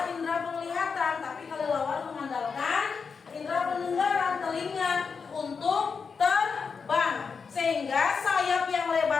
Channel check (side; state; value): right; quieter; 5.5 dB